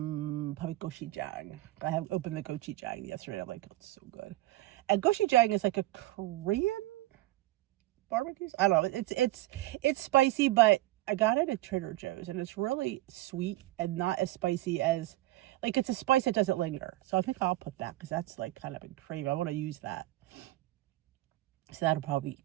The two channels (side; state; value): left; quieter; 17.4 dB